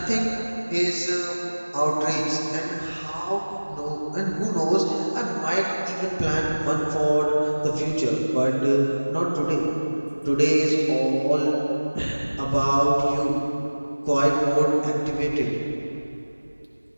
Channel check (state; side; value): inverted; both; correlation -1.00